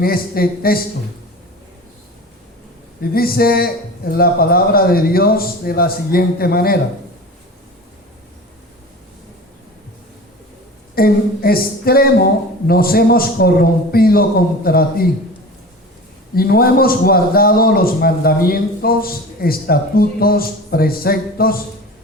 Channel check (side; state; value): both; normal; correlation 0.35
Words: este texto. Y dice la palabra de Dios de la siguiente manera: en extremo nos hemos corrompido contra ti, y no hemos guardado los mandamientos, estatutos, preceptos